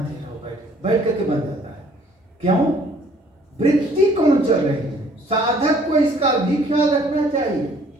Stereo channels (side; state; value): both; normal; correlation 0.58